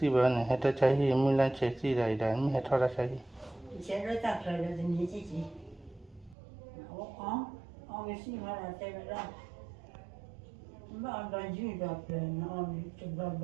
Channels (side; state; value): left; drops out; at 6.4 s